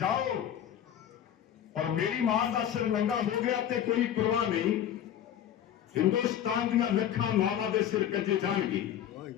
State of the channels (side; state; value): right; quieter; 10.2 dB